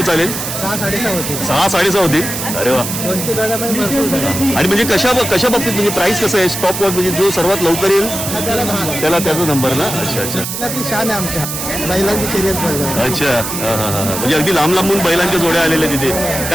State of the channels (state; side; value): noise; right; hiss, 5 dB below the sound